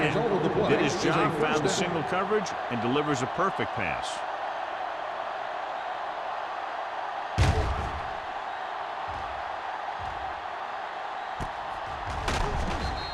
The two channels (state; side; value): identical; both; correlation 1.00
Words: did his job, found the single coverage, and delivers a perfect pass.